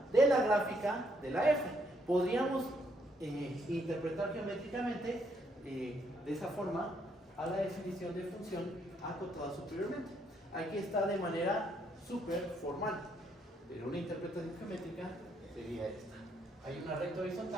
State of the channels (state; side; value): normal; both; correlation 0.72